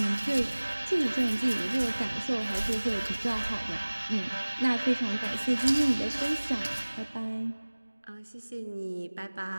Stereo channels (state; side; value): inverted; both; correlation -1.00